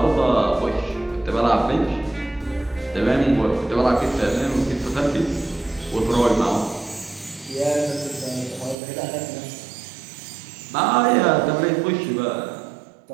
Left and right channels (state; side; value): drops out; left; at 8.8 s